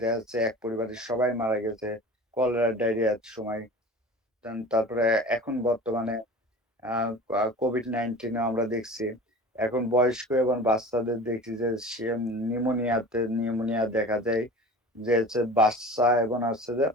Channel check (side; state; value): both; normal; correlation 0.38